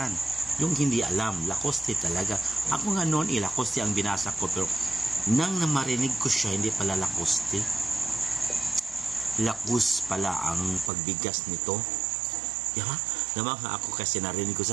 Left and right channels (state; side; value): drops out; left; at 10.9 s